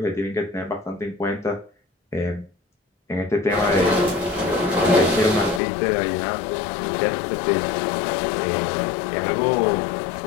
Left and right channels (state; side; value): drops out; right; at 5.6 s